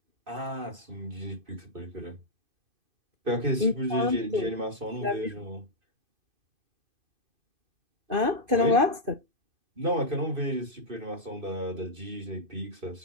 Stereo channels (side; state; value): left; late; 2.5 ms